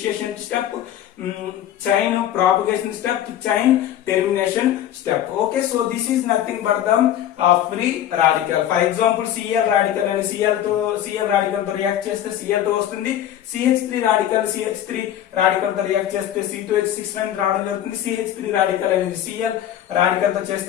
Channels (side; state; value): right; quieter; 11.4 dB